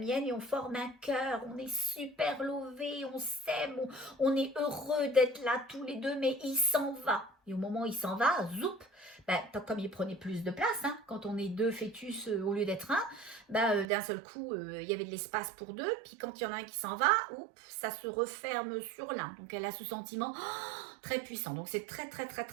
Et on forme un cœur. On est super lovés. On s'aime. On est heureux d'être là tous les deux. Mais il s'en va. Et au moment où il s'en va, zoup, comme il prenait plus de place, hein, quand on est 2 fœtus au lieu d'être un, d'un seul coup, il y avait de l'espace pour 2, puis quand il y en a un qui s'en va, oups, ça se referme sur l'un. Donc elle a ce sentiment très puissant. Donc c'est très, très, très,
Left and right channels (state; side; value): drops out; left; at 13.9 s